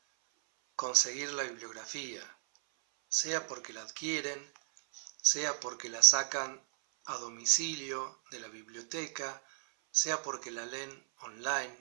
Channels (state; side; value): silent; left; 54 dB below the other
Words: conseguir la bibliografía, sea porque la adquieren, sea porque la sacan a domicilio de la biblioteca, sea porque la leen